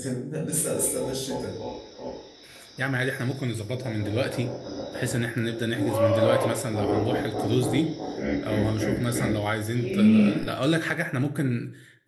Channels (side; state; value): both; identical; correlation 1.00